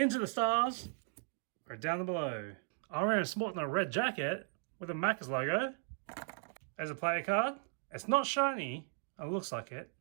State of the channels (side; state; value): left; silent; 53 dB below the other